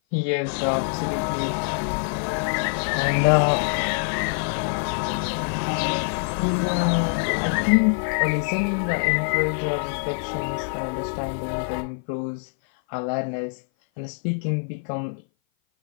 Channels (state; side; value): silent; right; 57 dB below the other